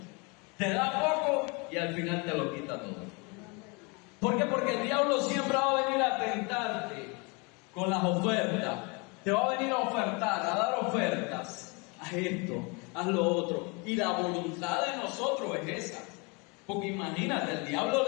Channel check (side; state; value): right; quieter; 30.3 dB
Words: te da poco y al final te lo quita todo. ¿Por qué? Porque el diablo siempre va a venir a tentarte con las ofertas. Te va a venir a ofertar, a dar ofertas. Haz esto, haz lo otro. Y la voluntad de nosotros es esa. Porque imagínate, el diablo